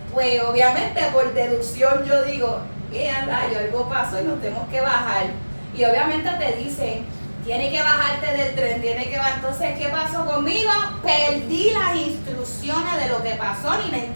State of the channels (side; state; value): both; inverted; correlation -1.00